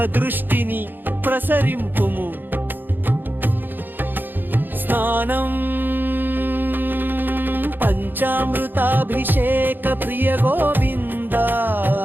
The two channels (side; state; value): left; late; 0.092 ms